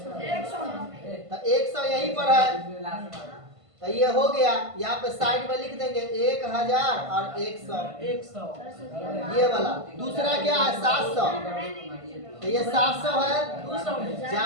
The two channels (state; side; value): late; left; 1.5 ms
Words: तो 100 यहीं पर है, तो ये हो गया। यहाँ पे साइड में लिख देंगे 1000 और 100, 100 ये वाला। दूसरा क्या है? 700, तो ये 700 है, 200 में